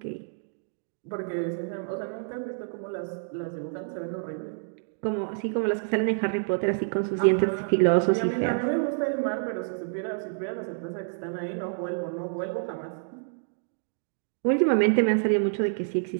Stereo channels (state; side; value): silent; left; digital silence